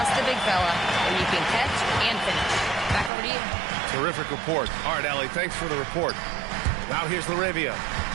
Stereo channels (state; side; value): drops out; left; at 3.1 s